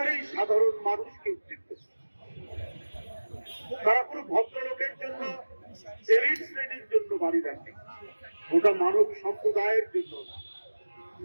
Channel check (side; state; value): both; inverted; correlation -1.00